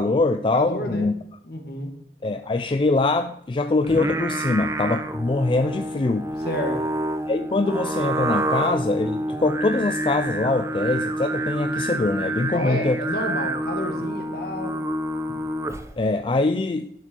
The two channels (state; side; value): normal; both; correlation 0.57